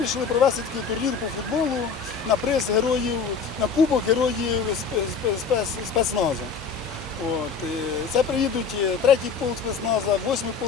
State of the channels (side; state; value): right; quieter; 5.6 dB